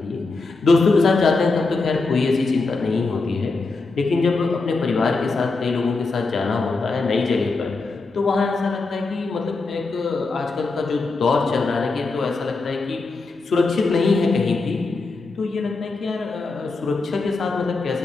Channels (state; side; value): quieter; right; 3.8 dB